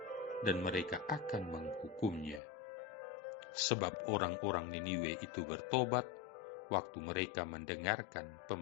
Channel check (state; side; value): drops out; right; at 2.4 s